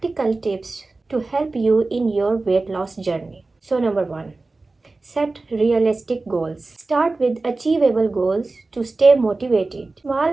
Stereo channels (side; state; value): left; quieter; 3.4 dB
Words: tips to help you in your weight loss journey. So number 1, set realistic goals. Start with achievable goals to stay motivated.